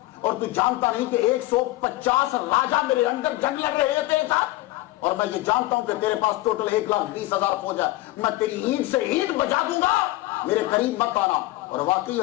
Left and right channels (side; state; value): right; quieter; 18.2 dB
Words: اور تو جانتا نہیں کہ 150 راجا میرے اندر جنگ لڑ رہے تھے ساتھ، اور میں یہ جانتا ہوں کہ تیرے پاس ٹوٹل 1,20,000 فوج ہے، میں تیری اینٹ سے اینٹ بجا دوں گا، میرے قریب مت آنا۔ اور واقعی